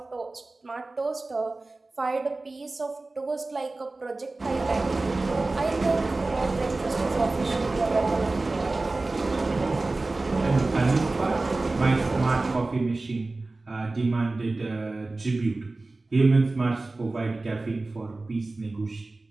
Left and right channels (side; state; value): left; quieter; 3.2 dB